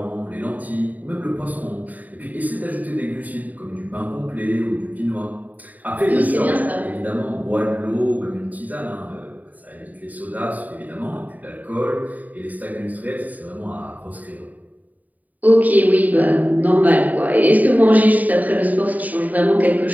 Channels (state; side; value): late; left; 0.077 ms